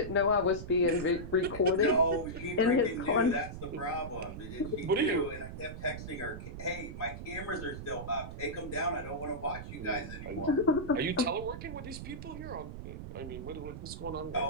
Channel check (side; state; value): right; noise; rumble, 9 dB below the sound